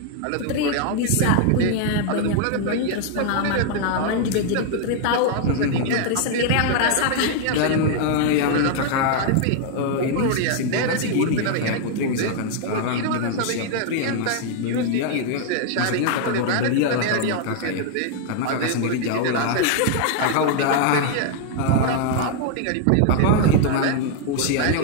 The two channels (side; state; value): both; different; correlation 0.00